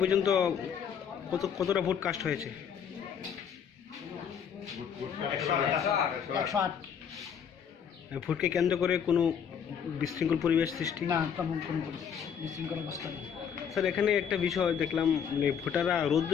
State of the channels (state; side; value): quieter; right; 7.7 dB